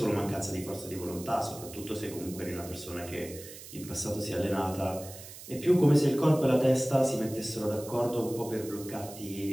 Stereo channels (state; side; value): noise; right; hiss, 15 dB below the sound